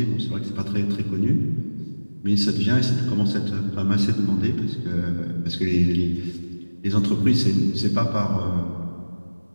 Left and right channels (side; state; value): both; inverted; correlation -1.00